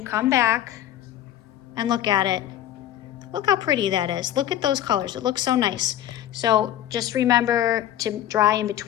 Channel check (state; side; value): quieter; right; 12.0 dB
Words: come back and look at it, look how pretty that is. Look at those colors, it looks so nice. So just remember to dry in